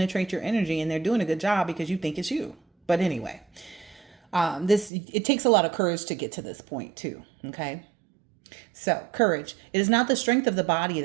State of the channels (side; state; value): left; drops out; at 4.9 s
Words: your energy, and they're doing a good job because you think it's you. But anyway. It takes a lot of courage to get to this point too. Okay. So courage, it is not the strength of the body